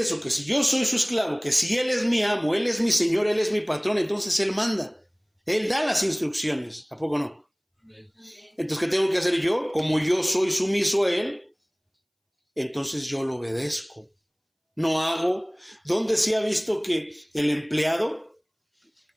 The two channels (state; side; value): identical; both; correlation 1.00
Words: Que si yo soy su esclavo, que si Él es mi amo, Él es mi Señor, Él es mi patrón, entonces Él manda. Él da las instrucciones. ¿A poco no? Entonces, ¿qué tengo que hacer yo? Como yo soy sumiso a Él, entonces yo lo obedezco. No hago. ¿Dónde se ha visto que el empleado